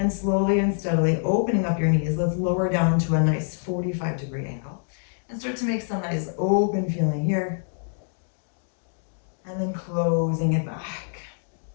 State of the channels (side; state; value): right; silent; digital silence